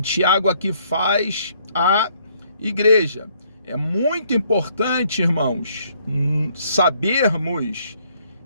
aqui faz à igreja. É muito importante, irmãos, sabermos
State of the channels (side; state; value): both; inverted; correlation -0.67